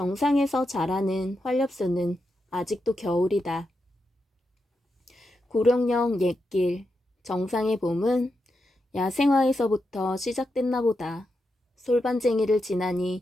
자라는 활엽수는 아직도 겨울이다. 구룡령 옛길, 정상의 봄은 야생화에서부터 시작됐나 보다. 솔반쟁이를 지나니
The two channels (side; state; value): both; normal; correlation 0.86